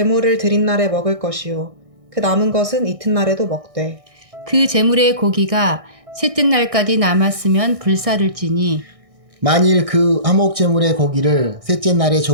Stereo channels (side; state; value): left; late; 1.6 ms